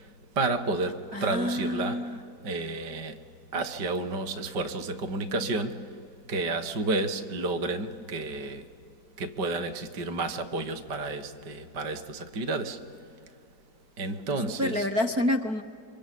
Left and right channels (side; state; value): left; late; 5.1 ms